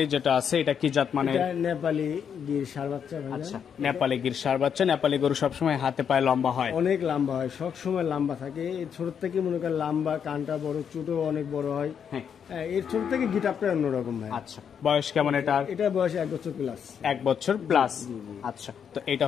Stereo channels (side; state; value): right; quieter; 7.6 dB